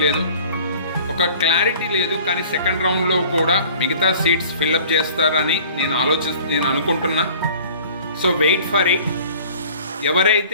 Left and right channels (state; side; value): inverted; both; correlation -0.48